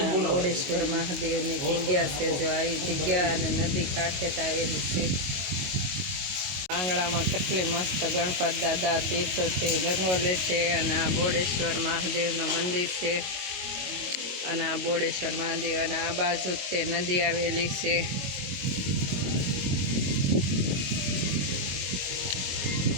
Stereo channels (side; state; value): left; late; 22 ms